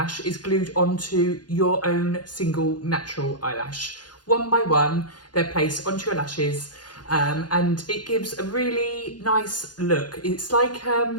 is glued onto your own single natural eyelash. One by one, they're placed onto your lashes, and it gives a really nice look. It's like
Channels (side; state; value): right; late; 0.70 ms